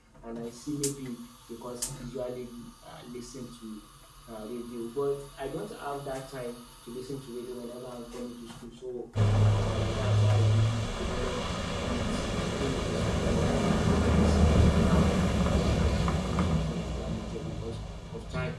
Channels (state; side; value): identical; both; correlation 1.00